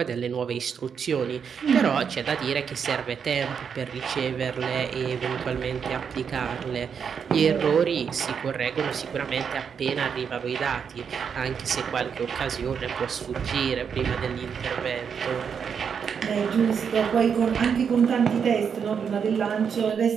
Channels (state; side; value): quieter; left; 6.9 dB